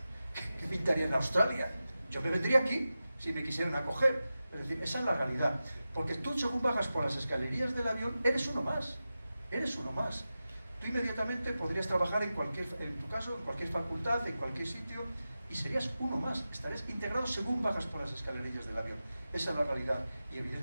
¿Qué pintaría en Australia? Yo me vendría aquí, si me quisieran acoger. Es decir, esa es la realidad. Porque tú, según bajas por las escalerías del avión, eres uno más. Eres uno más. Tú inmediatamente podrías trabajar en tu caso, en cualquier facultad, en cualquier sitio, y serías uno más, estarías integrado según bajas por las escalerillas del avión. Esa es la realidad. Y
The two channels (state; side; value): inverted; both; correlation -0.93